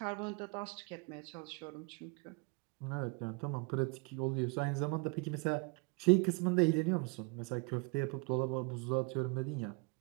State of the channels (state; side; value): quieter; left; 31.3 dB